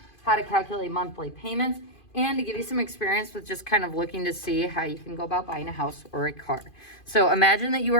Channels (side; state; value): right; late; 2.5 ms